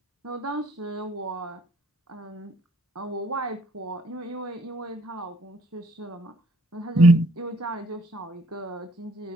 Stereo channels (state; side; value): normal; both; correlation 0.62